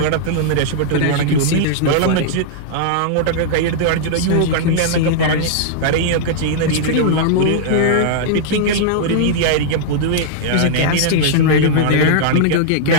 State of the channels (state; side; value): different; both; correlation -0.01